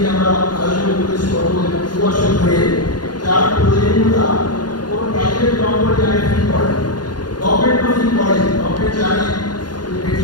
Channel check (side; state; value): right; late; 0.70 ms